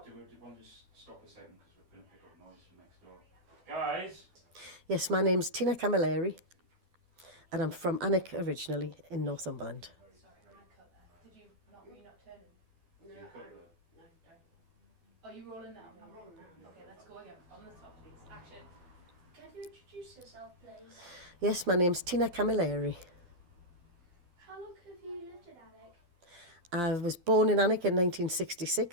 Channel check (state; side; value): late; left; 12 ms